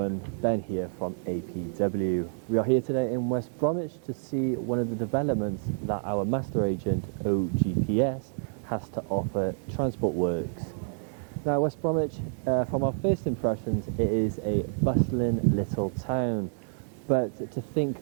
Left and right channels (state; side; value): silent; left; digital silence